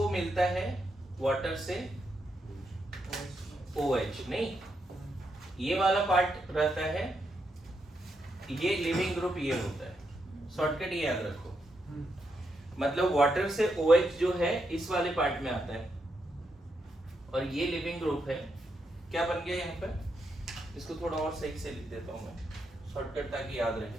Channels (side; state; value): both; normal; correlation 0.82